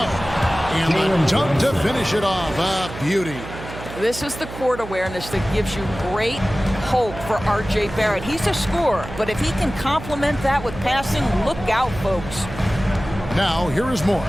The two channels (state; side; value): noise; right; hum, 11 dB below the sound